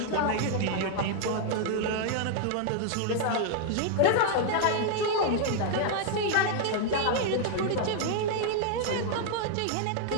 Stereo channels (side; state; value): both; different; correlation 0.00